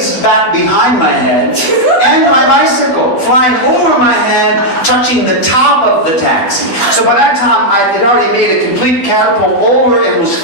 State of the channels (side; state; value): right; late; 12 ms